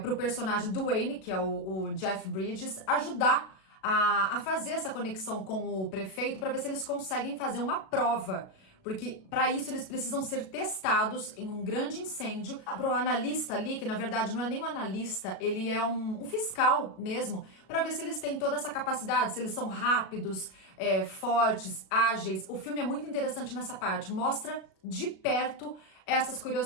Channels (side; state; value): right; late; 37 ms